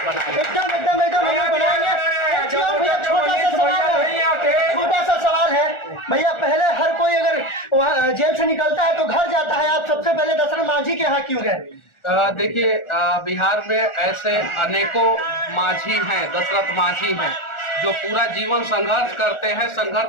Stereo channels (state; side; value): late; right; 1.4 ms